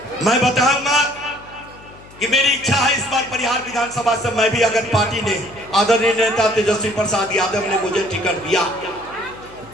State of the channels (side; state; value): left; noise; hum, 22 dB below the sound